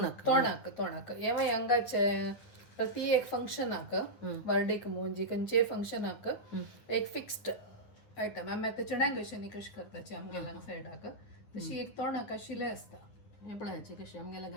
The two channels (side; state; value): right; late; 9.8 ms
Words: ಏವ ಹಂಗಾಚೆ प्रति एक फंक्शन आक बर्थडे के मोंजी कंचे फंक्शन आक एक फिक्स्ड आयटम आम्ही आता चण्याक कशी कशी करताची आमगेला सायड आक तशी एक तोंडाक शिले असता पळायचे कशी